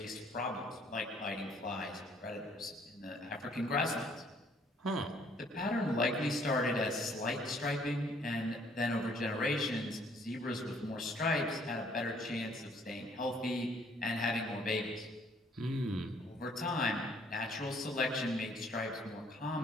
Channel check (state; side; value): normal; both; correlation 0.62